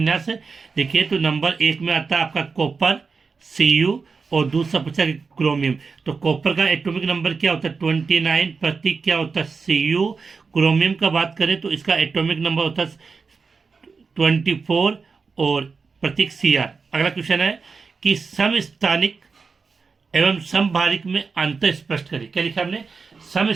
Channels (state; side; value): quieter; left; 4.8 dB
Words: तो नंबर 1 में आता है आपका कॉपर Cu, और दूसरा पूछा कि क्रोमियम। तो कॉपर का एटॉमिक नंबर क्या होता है 29, प्रतीक क्या होता है Cu। क्रोमियम का बात करें तो इसका एटॉमिक नंबर होता है 24 और प्रतीक Cr। अगला क्वेश्चन है कि समस्थानिक एवं समभारिक में अंतर स्पष्ट करें। क्या लिखा हमने?